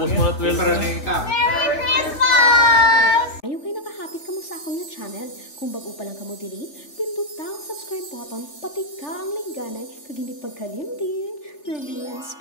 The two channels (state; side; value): late; right; 3.4 ms